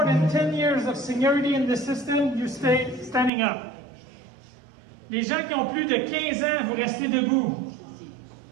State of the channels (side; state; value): left; drops out; at 3.3 s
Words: than 10 years of seniority in the system, you stay standing up. Les gens qui ont plus de 15 ans, vous restez debout.